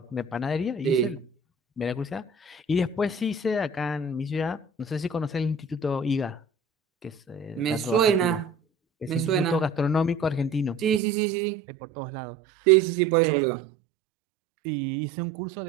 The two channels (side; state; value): left; drops out; at 11.0 s